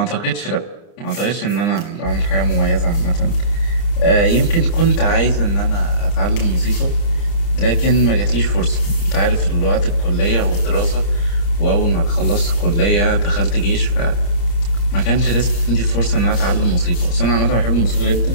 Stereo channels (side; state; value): right; late; 29 ms